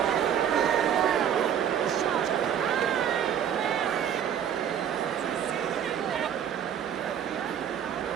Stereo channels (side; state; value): left; quieter; 9.1 dB